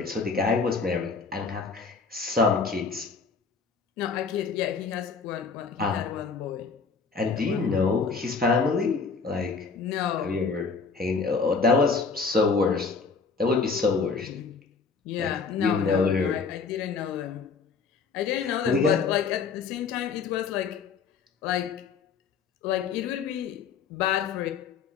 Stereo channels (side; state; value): right; quieter; 5.0 dB